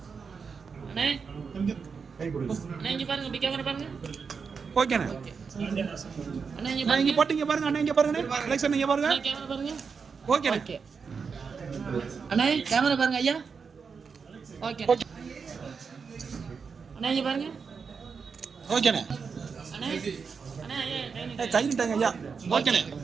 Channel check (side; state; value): left; quieter; 5.6 dB